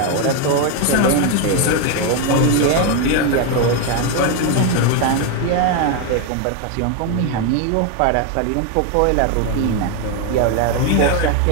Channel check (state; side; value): different; both; correlation 0.01